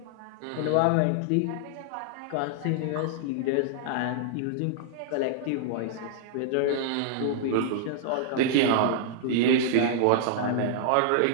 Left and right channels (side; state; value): both; different; correlation -0.01